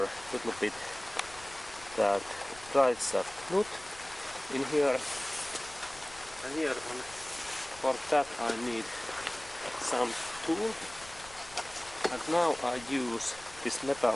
a little bit that drive shaft nut in here. And here for that I need some tool, and now I use this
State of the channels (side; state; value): left; noise; rumble, 20 dB below the sound